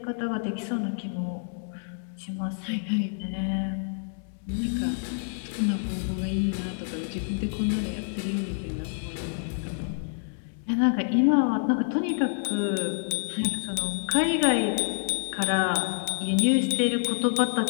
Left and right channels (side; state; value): right; silent; digital silence